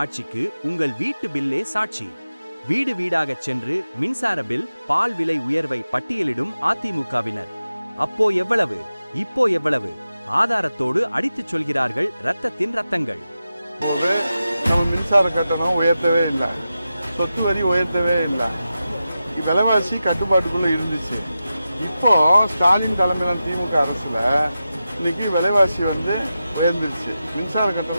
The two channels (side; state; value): both; inverted; correlation -0.92